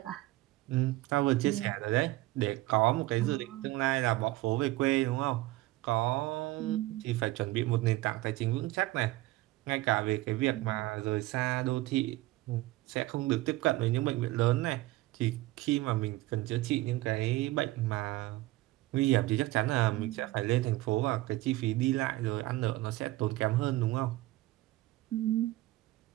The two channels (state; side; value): quieter; left; 18.3 dB